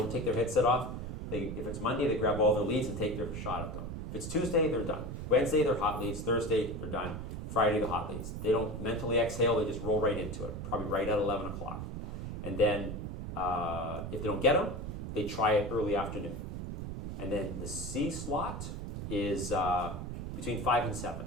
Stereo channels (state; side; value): noise; right; rumble, 6 dB below the sound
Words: take their headset off. If it's Monday, they grab all their leads and take their shot at them. If it's Tuesday, they're done. Wednesday, they're hot leads. Thursday, they're done. Friday, the hot leads. They don't mentally exhale, they just roll right into it, probably right at 11 o'clock. And then if they don't get them, they try it early afternoon. And then the C slot is between 5 and 7.